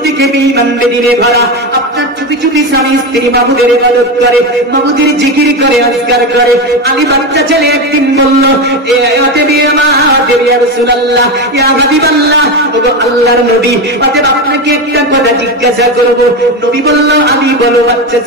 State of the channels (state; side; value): normal; both; correlation 0.17